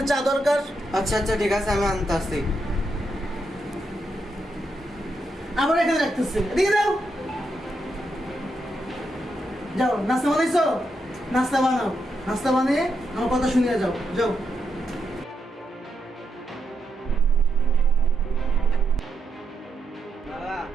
চা দরকার। আচ্ছা ঠিক আছে আমি আনতেছি। আমার এখানে রাখতেছি, এদিকে দাও। যাও, নাস্তা বানাইছো? নাস্তা বানাও, নাস্তা বানিয়ে আমার কথা শুনিয়ে যাও। যাও। বাবা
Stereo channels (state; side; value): normal; both; correlation 0.82